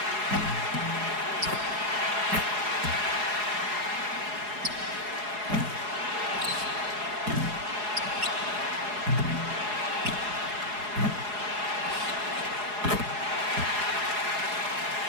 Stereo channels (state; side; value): late; left; 4.8 ms